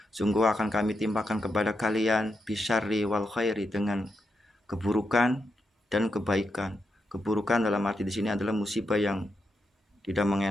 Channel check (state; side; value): normal; both; correlation 0.85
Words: Sungguh akan kami timpakan kepada kalian bisyarri wal khairi, dengan keburukan dan kebaikan. Keburukan dalam arti di sini adalah musibah yang tidak